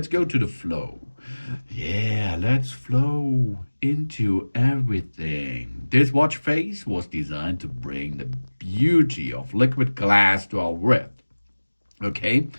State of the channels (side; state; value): both; inverted; correlation -1.00